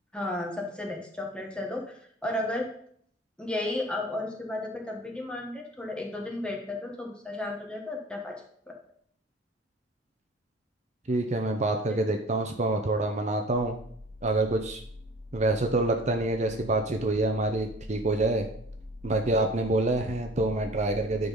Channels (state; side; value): normal; both; correlation 0.45